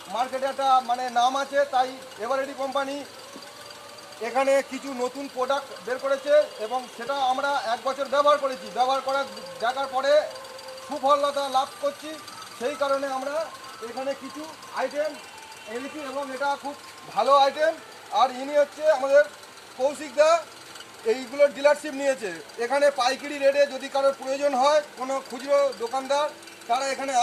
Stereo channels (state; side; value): identical; both; correlation 1.00